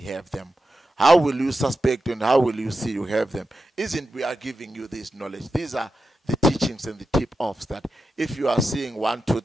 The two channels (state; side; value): normal; both; correlation 0.90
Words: them. How will you suspect and how will you see you have them? Isn't we are giving you this knowledge? These are the teachings and the tip-offs that if you are seeing 1, 2,